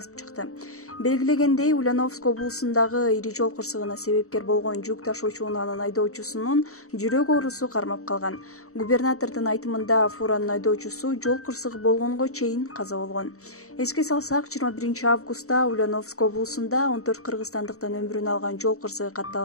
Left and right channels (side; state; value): right; late; 0.64 ms